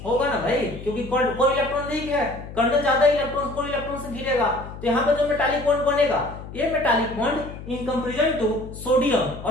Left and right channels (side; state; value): left; noise; hum, 13 dB below the sound